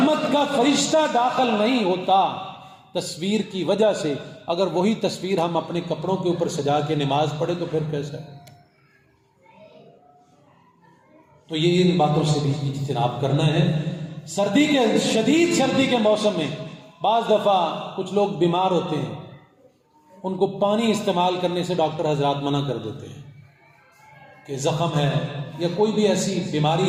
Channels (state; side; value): identical; both; correlation 1.00